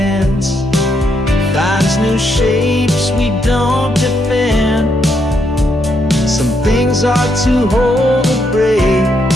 finds new shapes we don't defend. Some things are too whole to break,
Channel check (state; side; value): normal; both; correlation 0.77